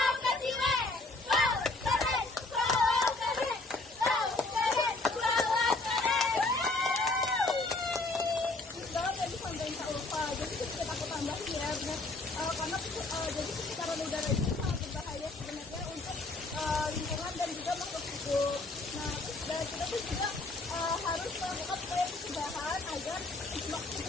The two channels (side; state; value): right; quieter; 3.2 dB